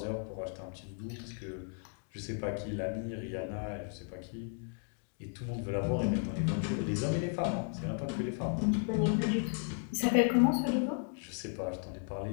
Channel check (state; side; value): silent; right; 55 dB below the other